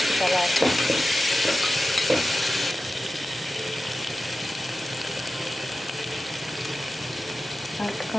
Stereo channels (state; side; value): normal; both; correlation 0.93